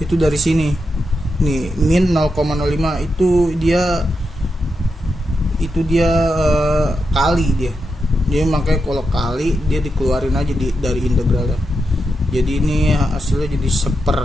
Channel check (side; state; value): both; normal; correlation 0.86